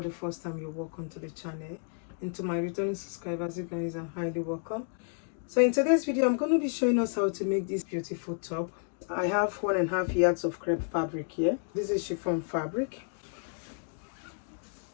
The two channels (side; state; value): right; silent; digital silence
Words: the first time, you're welcome to the channel. And to my returning subscribers, you guys are highly welcome. So in today's video, I'm going to be showing us how to make this beautiful top. I have 1.5 yards of crepe fabric here. This is chiffon fabric.